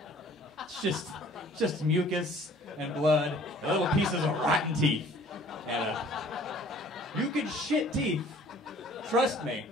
It's just mucus and blood, and little pieces of rotten teeth. And you can shit teeth. Trust me.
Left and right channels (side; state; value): both; normal; correlation 0.53